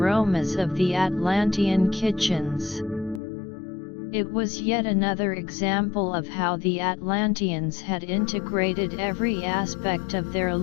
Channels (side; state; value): right; drops out; at 3.2 s